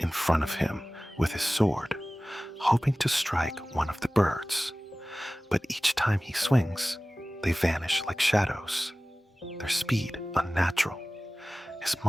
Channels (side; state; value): both; normal; correlation 0.97